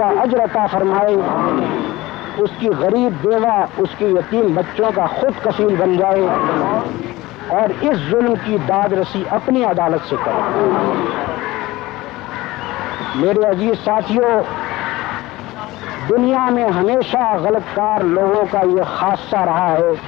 اجر عطا فرمائے، اس کی غریب بیوہ، اس کے یتیم بچوں کا خود کفیل بن جائے، اور اس ظلم کی داد رسی اپنی عدالت سے کرے۔ میرے عزیز ساتھیوں، دنیا میں ہمیشہ غلط کار لوگوں کا یہ خاصہ رہا ہے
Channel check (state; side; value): quieter; right; 18.9 dB